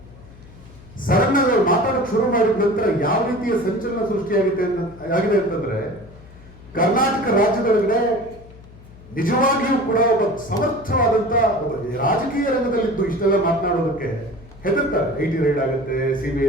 ಸಡನ್ ಆಗಿ ಅವ್ರು ಮಾತಾಡೋಕೆ ಶುರು ಮಾಡಿದ ನಂತರ ಯಾವ ರೀತಿಯ ಸಂಚಲನ ಸೃಷ್ಟಿಯಾಗಿದೆ ಅಂತಂದ್ರೆ, ಕರ್ನಾಟಕ ರಾಜ್ಯದೊಳಗಡೆ ನಿಜವಾಗಿಯೂ ಕೂಡ ಒಬ್ಬ ಸಮರ್ಥವಾದಂತ ಒಬ್ಬ ರಾಜಕೀಯ ರಂಗದಲ್ಲಿದ್ದು ಇಷ್ಟೆಲ್ಲ ಮಾತನಾಡೋದಕ್ಕೆ ಹೆದರ್ತಾರೆ. ಐಟಿ ರೈಡ್ ಆಗುತ್ತೆ,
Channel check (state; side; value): noise; left; hum, 21 dB below the sound